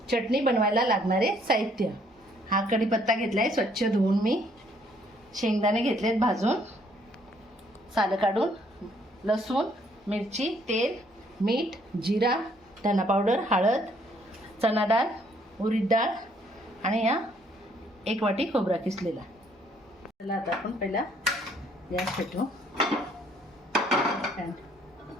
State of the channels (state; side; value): normal; both; correlation 0.66